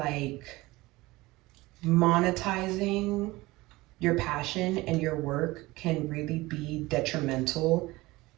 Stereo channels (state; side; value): quieter; left; 20.4 dB